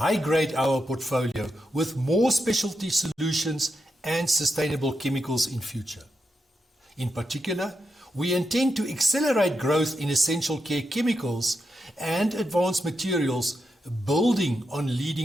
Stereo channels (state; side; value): normal; both; correlation 0.86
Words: our portfolio with more specialty solutions and sustainable chemicals in future. In particular, we intend to accelerate growth in essential care chemicals and advanced materials, building on